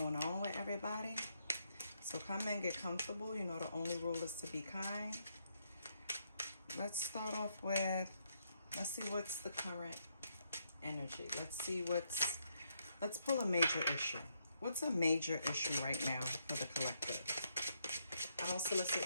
on with everybody. So come in, get comfortable. You know the only rule is to be kind. Let's start off with, let's see what's the current energy. Let's pull a major issue. What's a major issue right now for the collective? I don't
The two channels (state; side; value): inverted; both; correlation -0.76